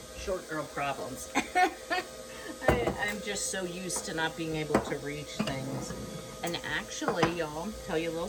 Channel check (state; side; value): identical; both; correlation 1.00